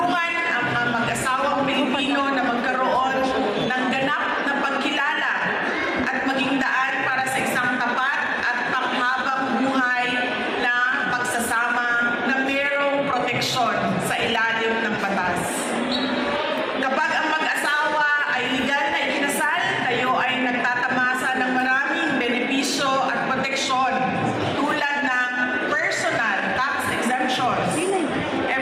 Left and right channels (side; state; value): both; identical; correlation 1.00